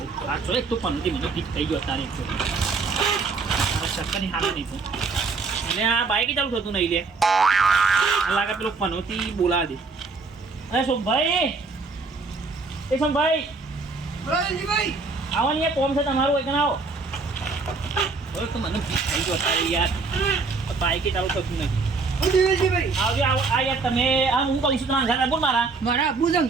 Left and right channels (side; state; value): left; quieter; 4.2 dB